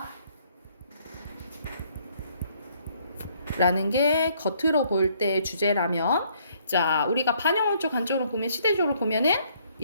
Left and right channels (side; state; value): both; inverted; correlation -0.66